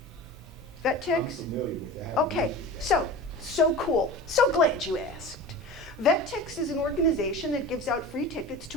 VetTix? I'm familiar with that. Okay, so cool. So glad you asked. VetTix is an organization that gives out free tickets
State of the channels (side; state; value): both; normal; correlation 0.34